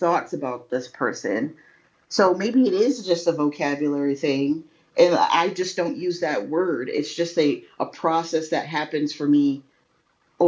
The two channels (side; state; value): both; identical; correlation 1.00